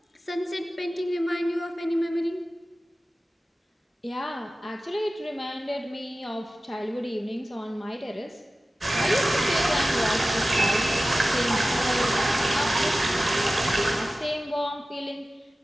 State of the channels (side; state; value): both; normal; correlation 0.95